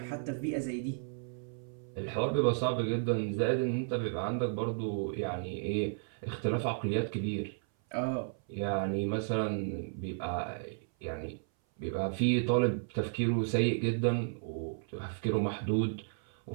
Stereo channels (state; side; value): silent; left; 55 dB below the other